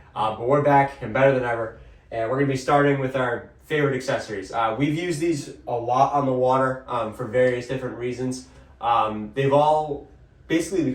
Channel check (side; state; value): both; identical; correlation 1.00